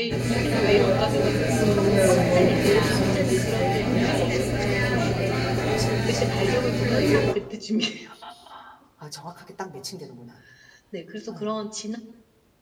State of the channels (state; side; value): identical; both; correlation 1.00